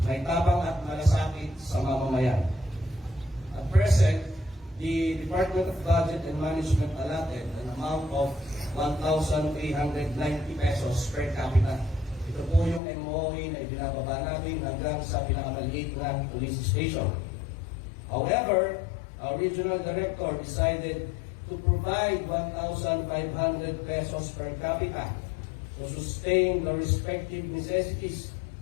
may tabang at malasakit sa mamamayan. At present, the Department of Budget and Management allotted an amount of 1,890 pesos per capita. Ito po yung MOE na ibinababa natin hanggang sa pinakamaliit na police station. However, our regional director decided to provide 1,500 pesos per capita to sustain the respective necessities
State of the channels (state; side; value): drops out; right; at 12.8 s